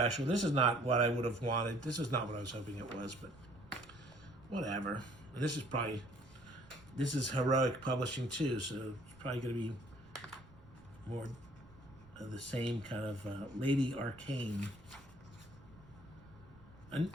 This is not what I would have wanted. This is not what I was hoping it was, but whatever. And this is Heroic Publishing too, so it's probably going to be more of the same kind of Lady Arcane. And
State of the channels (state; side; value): noise; right; rumble, 23 dB below the sound